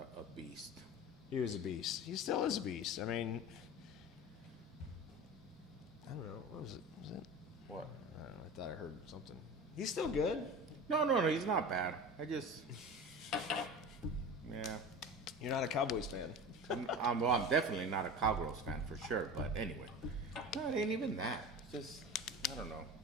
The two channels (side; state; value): both; normal; correlation 0.32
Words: beast. He was a beast. He still is a beast. I mean, I don't know. What was it? What? I don't know. I thought I heard something. He's still good. No, he's not bad. I just, yeah. You're not a Cowboys fan. I'm definitely not a Cowgirls fan for sure. But anyway, no, it ain't even that. It's just, I don't know.